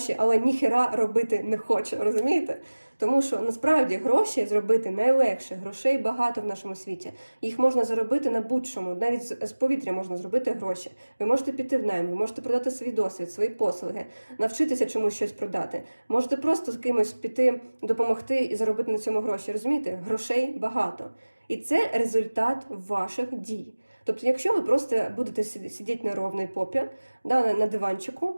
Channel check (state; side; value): inverted; both; correlation -1.00